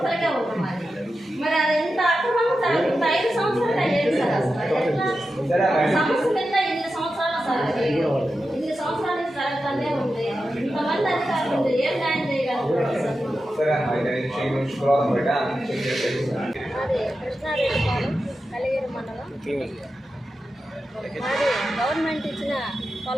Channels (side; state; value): both; normal; correlation 0.91